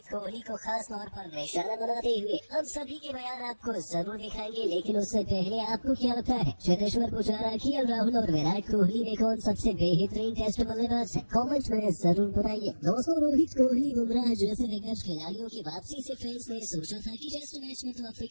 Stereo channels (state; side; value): inverted; both; correlation -1.00